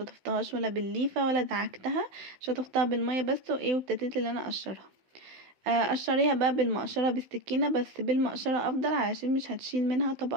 ولا بالليفه ولا دعكتها، شطفتها بالميه بس وايه، وابتديت ان انا اقشرها. قشريها بقى بالمقشرة بالسكينة، بس بالمقشرة افضل علشان مش هتشيل منها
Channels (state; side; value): late; left; 16 ms